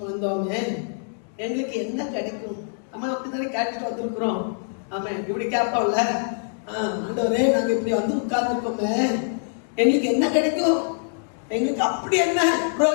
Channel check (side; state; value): right; silent; digital silence